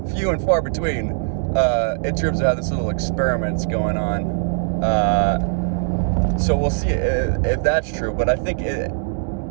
few and far between in terms of how this little experiment's going on. So we'll see if that's true. But I think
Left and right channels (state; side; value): silent; left; digital silence